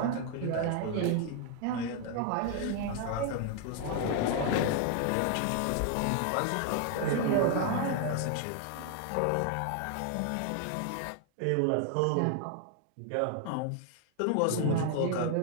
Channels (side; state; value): both; different; correlation 0.00